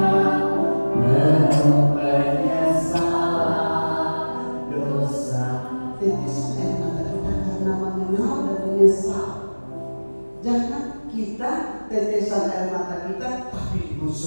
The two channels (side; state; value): both; inverted; correlation -1.00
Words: penuh penyesalan dosa. Tetesan air mata kita karena mengenal dan menyesal. Jangan kita tetesan air mata kita tapi